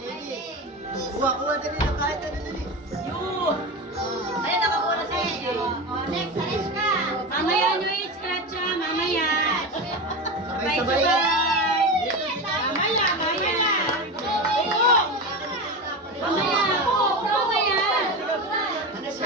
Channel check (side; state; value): both; normal; correlation 0.23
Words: Kuha din na kahit ano dali. Ay, nakakuha na si AJ. Next, alis ka. Mamaya nyo i-scratch siya, mamaya. Sabay-sabay yan. Mamaya, mamaya. Mamaya, mamaya.